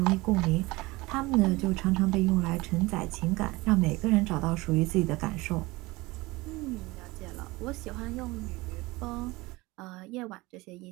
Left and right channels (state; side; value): quieter; left; 21.7 dB